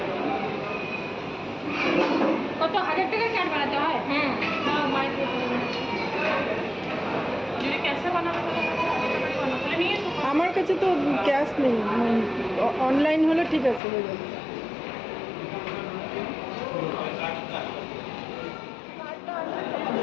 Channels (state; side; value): drops out; right; at 13.8 s